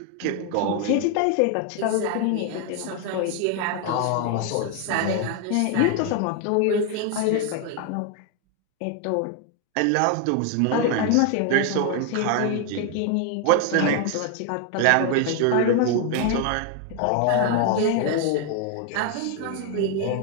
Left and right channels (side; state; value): both; different; correlation 0.01